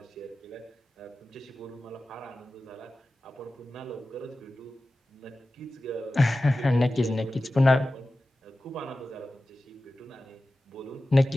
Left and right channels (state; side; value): normal; both; correlation 0.95